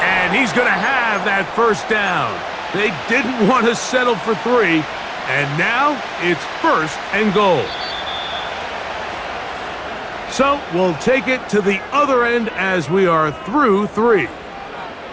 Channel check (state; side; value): identical; both; correlation 1.00